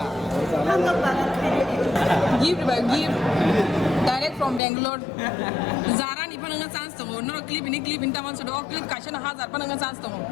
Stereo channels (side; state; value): right; drops out; at 4.6 s